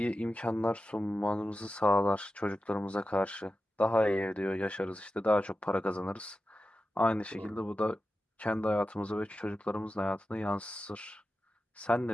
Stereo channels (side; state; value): both; normal; correlation 0.92